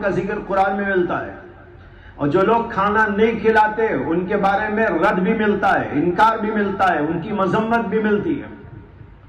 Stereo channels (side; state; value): both; identical; correlation 1.00